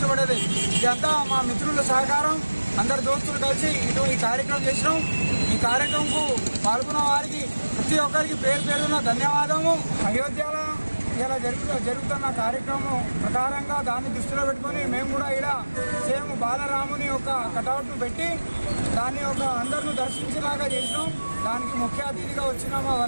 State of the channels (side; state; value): both; inverted; correlation -1.00